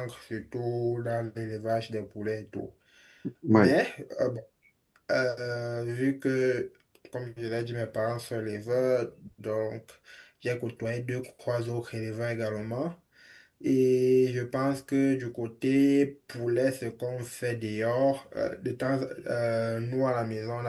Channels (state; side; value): identical; both; correlation 1.00